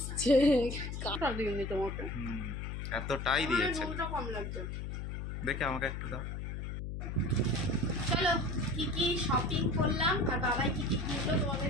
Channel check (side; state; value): left; noise; hum, 5 dB below the sound